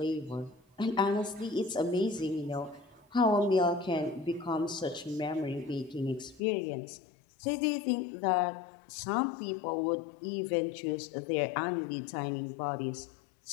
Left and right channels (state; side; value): drops out; right; at 6.4 s